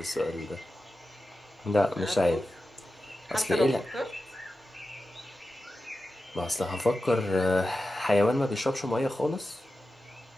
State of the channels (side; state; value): both; normal; correlation 0.92